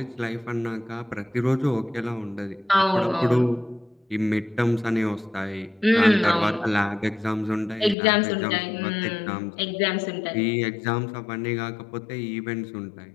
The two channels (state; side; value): drops out; right; at 8.0 s